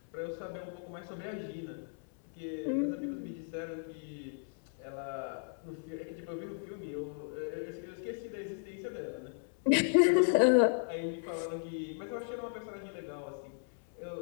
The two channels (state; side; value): silent; right; 54 dB below the other